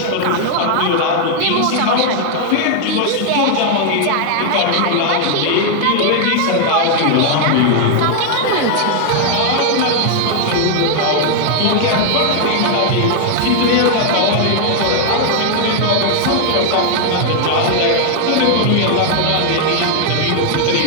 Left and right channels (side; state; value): both; different; correlation 0.00